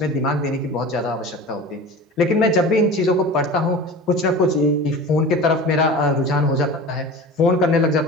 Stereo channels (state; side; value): normal; both; correlation 0.35